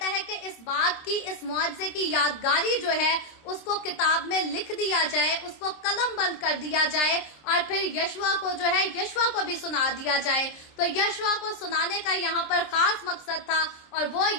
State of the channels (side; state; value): right; late; 26 ms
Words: है कि इस बात की, इस मुआवजे की यादगारी जो है اس کو کتاب میں لکھ دیا جائے, اس کو قلم بند کر دیا جائے اور پھر یشوا کو جو ہے یشوا کو بھی سنا دیا جائے. تو یشوا کو سنانے کا یہاں پر خاص مقصد تھا اور وہ